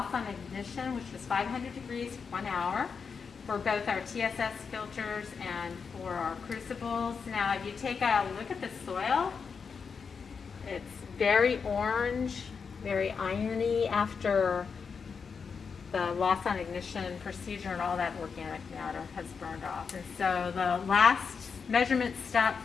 on ignition, which was 500 degrees for 1 hour for both our TSS filters and for our crucibles. Now, if you take a look at the soil, it's very orange, very irony after the loss on ignition procedure and all that organic matter has burned off. And so the last measurement step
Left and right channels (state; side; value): quieter; right; 5.7 dB